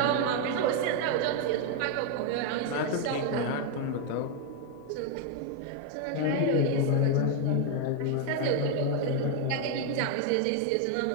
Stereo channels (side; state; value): both; different; correlation 0.01